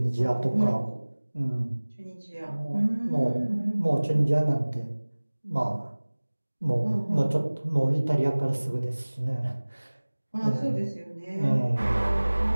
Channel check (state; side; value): inverted; both; correlation -1.00